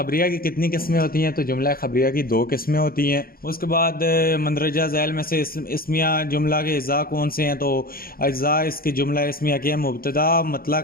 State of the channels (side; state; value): right; late; 0.43 ms